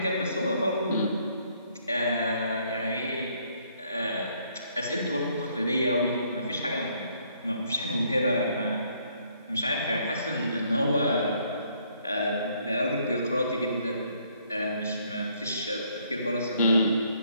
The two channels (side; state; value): both; inverted; correlation -0.67